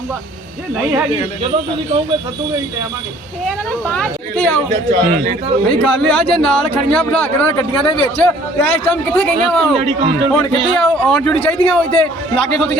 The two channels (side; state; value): both; normal; correlation 0.56